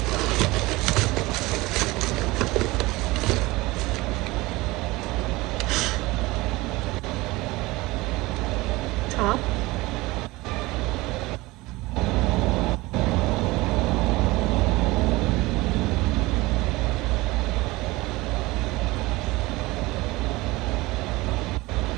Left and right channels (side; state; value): left; quieter; 21.0 dB